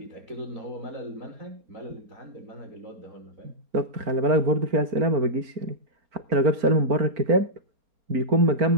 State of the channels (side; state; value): left; late; 4.4 ms